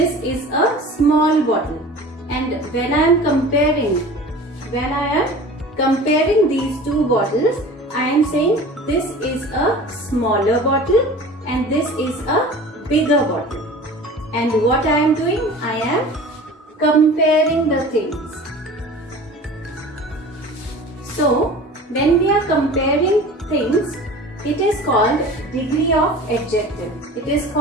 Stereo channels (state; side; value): normal; both; correlation 0.40